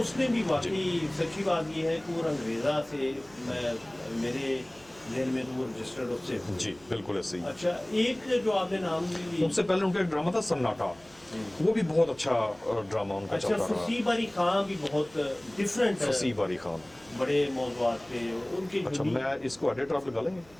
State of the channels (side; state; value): right; noise; hum, 27 dB below the sound